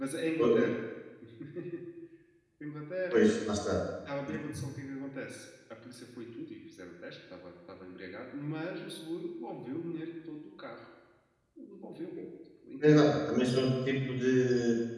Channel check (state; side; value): identical; both; correlation 1.00